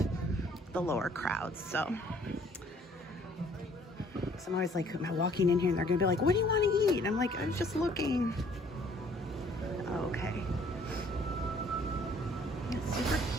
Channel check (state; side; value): normal; both; correlation 0.59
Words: the lower crowds. So I'm always like, am I walking in here and they're gonna be like, what do you want to eat? And I'm like, I'm just looking. Okay. It's super